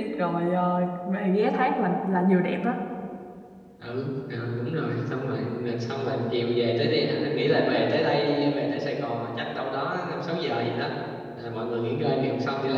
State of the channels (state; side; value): identical; both; correlation 1.00